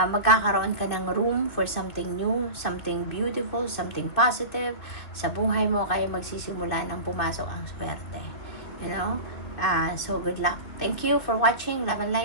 magkakaroon ka ng room for something new, something beautiful, something positive sa buhay mo, kaya magsisimula ng pumasok ang swerte. You know? So good luck. Thank you for watching. Love and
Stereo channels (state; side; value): late; right; 2.9 ms